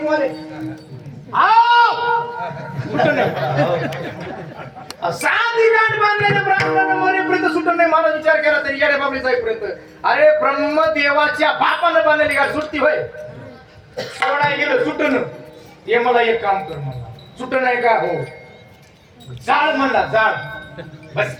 साधी गाठ बांधलेल्या ब्राह्मणानं मरेपर्यंत सुटून नाही. मला विचार केला तरी येड्या बाबडी जाईपर्यंत. अरे ब्रह्मदेवाच्या बापानं बांधलेली गाठ सुट्टी होय? सोडाय गेलो सुटून. ते मला एक काम कर म्हणला. सुटून आहे का? हो. जाळ म्हणला. जाळ. बस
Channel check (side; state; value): both; identical; correlation 1.00